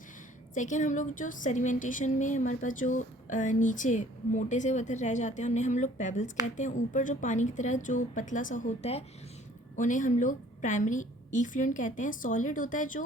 सेकेंड, हम लोग जो सेडिमेंटेशन में हमारे पास जो नीचे मोटे से पत्थर रह जाते हैं उन्हें हम लोग पेबल्स कहते हैं। ऊपर जो पानी की तरह जो पतला सा होता है उन्हें हम लोग प्राइमरी इफ्लुएंट कहते हैं। सॉलिड होता है जो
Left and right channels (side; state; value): both; normal; correlation 0.55